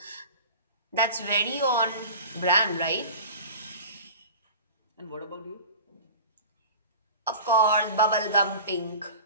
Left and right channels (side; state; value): both; inverted; correlation -0.37